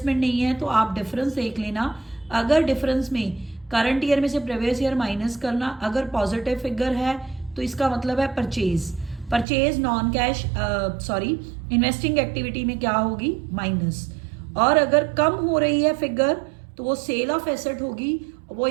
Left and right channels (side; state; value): left; drops out; at 9.5 s